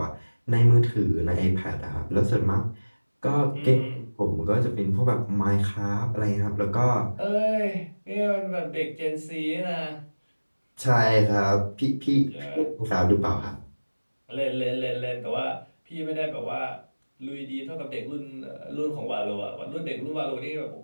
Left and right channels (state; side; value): inverted; both; correlation -1.00